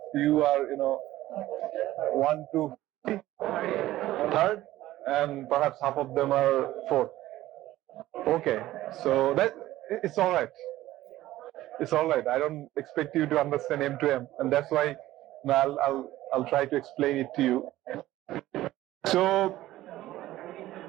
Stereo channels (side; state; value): left; quieter; 15.4 dB